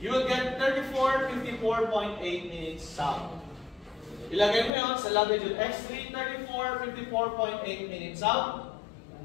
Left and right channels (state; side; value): drops out; right; at 4.7 s